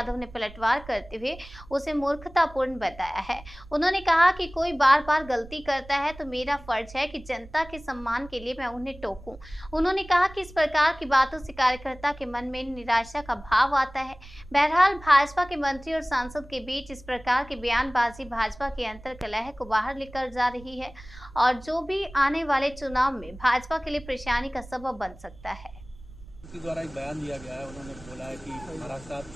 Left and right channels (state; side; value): noise; right; rumble, 19 dB below the sound